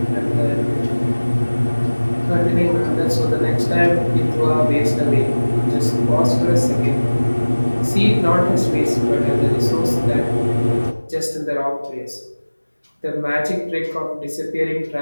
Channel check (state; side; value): inverted; both; correlation -1.00